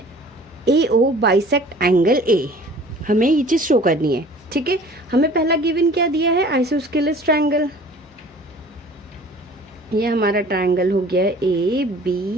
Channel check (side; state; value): both; normal; correlation 0.48